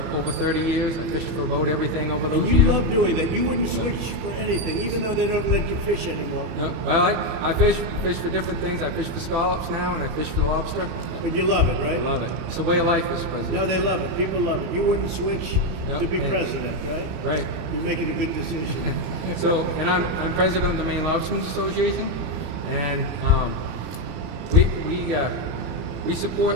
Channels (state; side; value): late; left; 32 ms